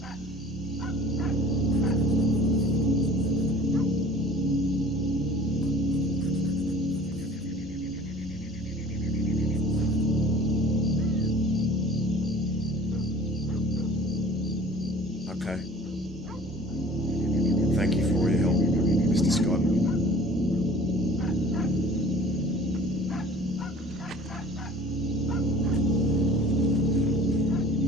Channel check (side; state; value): both; normal; correlation 0.48